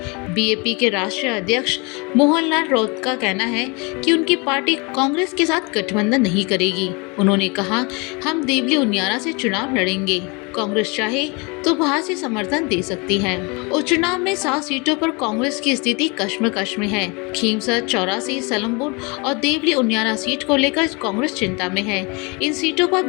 बीएपी के राष्ट्रीय अध्यक्ष मोहनलाल राउत का कहना है कि उनकी पार्टी कांग्रेस के साथ गठबंधन नहीं करेगी। उन्होंने कहा, हम देवली उनियारा से चुनाव लड़ेंगे। कांग्रेस चाहे तो बाहर से समर्थन दे सकती है। उपचुनाव में 7 सीटों पर कांग्रेस की स्थिति कश्मकश में है। खींवसर, 84, सलमपुर और देवली उनियारा सीट को लेकर कांग्रेस चिंता में है। इन सीटों पर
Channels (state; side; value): quieter; right; 29.4 dB